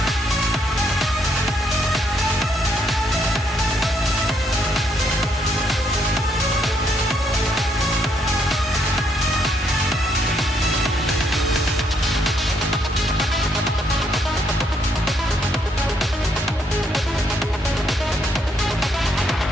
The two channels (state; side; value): normal; both; correlation 0.73